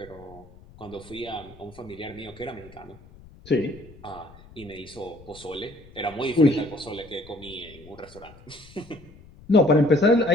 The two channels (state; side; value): noise; left; rumble, 21 dB below the sound